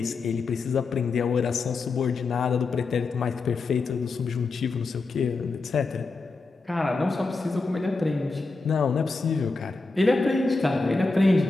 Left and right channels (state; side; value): quieter; right; 3.8 dB